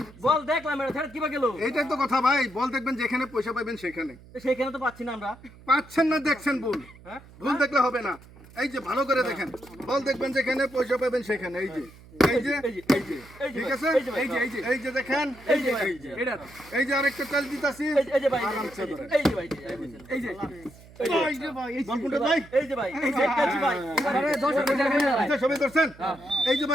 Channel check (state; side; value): noise; right; hum, 22 dB below the sound